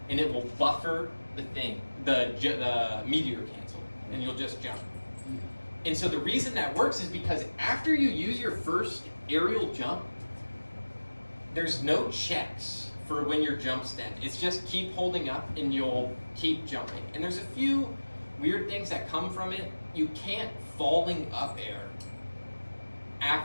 and it will buffer the thing, the meteor cancel, and you'll just jump. And so the reason that works is because after you use your first aerial jump, there's no checks for when your jump's dead. It's just keep holding up and you'll keep jumping. And there's a few weird things that come from it. You can't falling up air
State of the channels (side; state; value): both; inverted; correlation -1.00